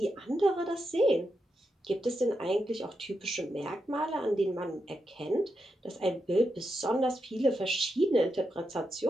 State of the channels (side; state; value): both; normal; correlation 0.86